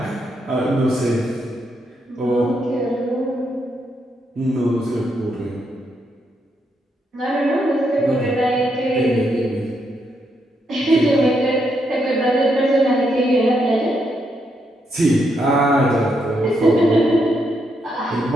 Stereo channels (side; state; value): both; normal; correlation 0.79